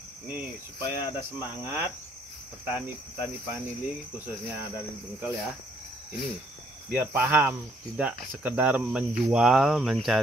Nih supaya ada semangat petani Panili khususnya dari Bengkel ya. Ini biar paham, tidak sekedar menjual,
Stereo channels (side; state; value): both; normal; correlation 0.67